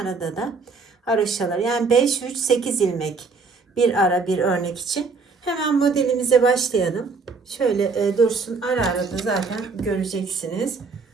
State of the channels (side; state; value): left; quieter; 4.4 dB